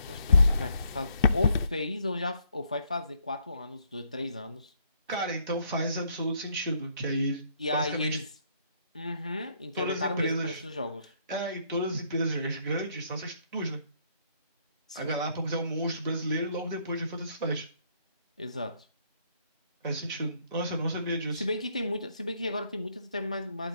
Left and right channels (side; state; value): both; inverted; correlation -0.69